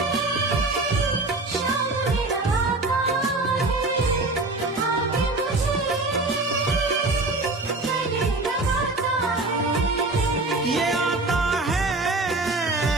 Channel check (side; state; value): left; quieter; 3.0 dB